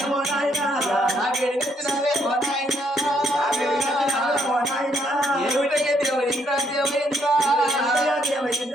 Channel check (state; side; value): normal; both; correlation 0.71